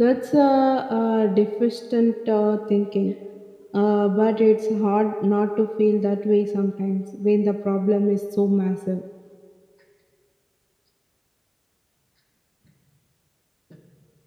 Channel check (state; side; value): identical; both; correlation 1.00